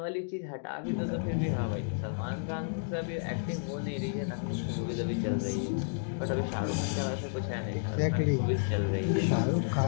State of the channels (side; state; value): right; silent; digital silence